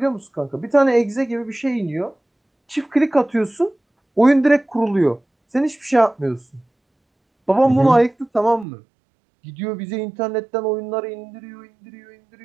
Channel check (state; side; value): drops out; left; at 8.7 s